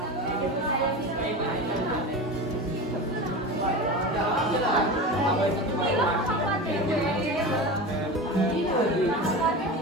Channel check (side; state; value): both; normal; correlation 0.28